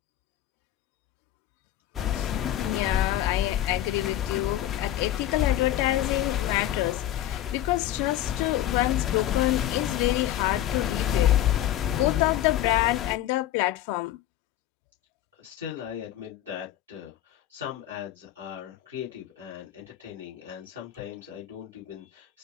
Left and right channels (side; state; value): right; quieter; 12.9 dB